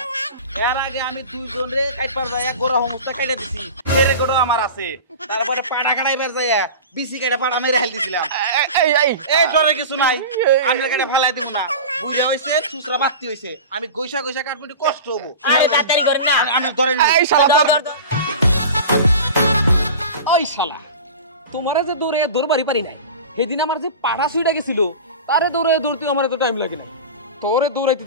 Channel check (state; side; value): inverted; both; correlation -0.32